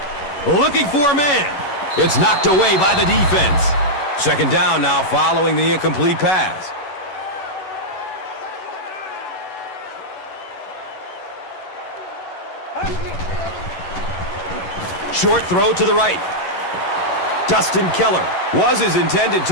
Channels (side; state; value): right; late; 11 ms